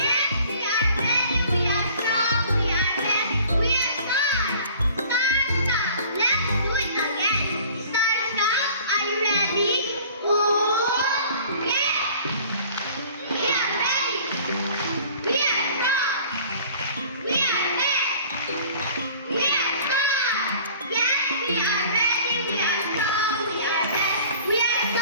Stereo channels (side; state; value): both; inverted; correlation -0.49